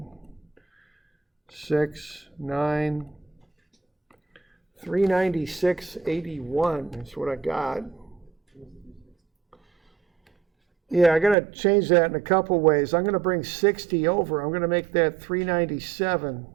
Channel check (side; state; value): left; drops out; at 11.4 s